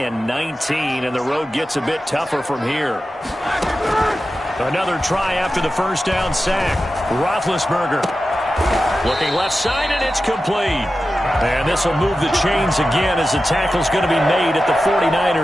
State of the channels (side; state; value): both; normal; correlation 0.93